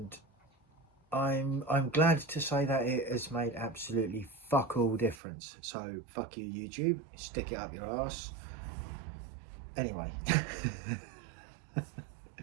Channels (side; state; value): left; drops out; at 5.2 s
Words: I'm glad to say that it has made absolutely fuck all difference. So fuck you, YouTube. Stick it up your ass. Anyway.